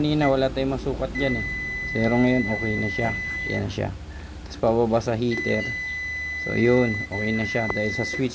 wala tayong masukat dyan eh. Pero ngayon okay na siya. Yan na siya. Tapos pababa sa heater. So yun, okay na siya dahil sa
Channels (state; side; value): identical; both; correlation 1.00